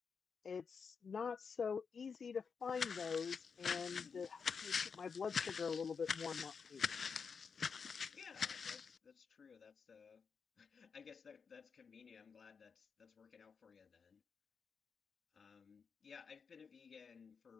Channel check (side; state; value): right; quieter; 5.8 dB